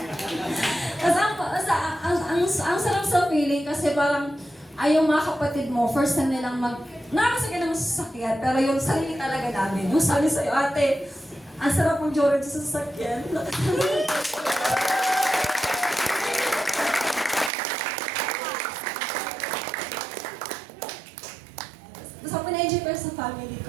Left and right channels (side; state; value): left; drops out; at 17.5 s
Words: Tapos ang sarap sa feeling kasi parang ay yung mga kapatid mo, first time nilang nakakasakyan ng sasakyan, pero yung sarili talaga namin. Yung sabi sa'yo, ate, ang sarap mong joran sa sasakyan. So, pina-enjoy ko sa family